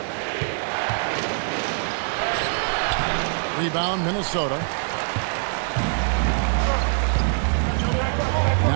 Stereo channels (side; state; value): left; silent; 63 dB below the other